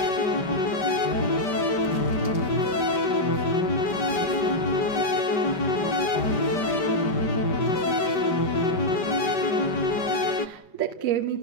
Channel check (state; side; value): late; right; 5.2 ms